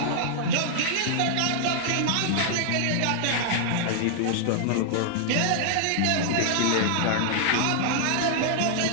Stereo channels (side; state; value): both; different; correlation 0.00